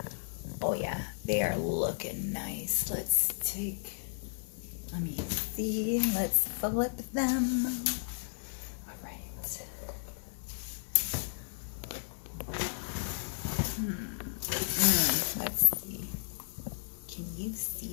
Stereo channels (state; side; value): silent; right; 55 dB below the other